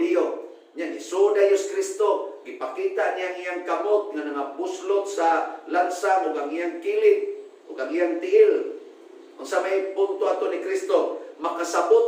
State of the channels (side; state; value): both; identical; correlation 1.00